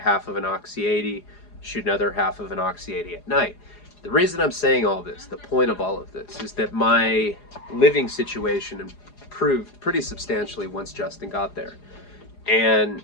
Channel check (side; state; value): right; late; 4.9 ms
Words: of an Oxy 80, shoot another half of an Oxy 80 at night. The reason I'm saying all this, the point of all of this, is that my living situation improved pretty substantially once Justin got there. And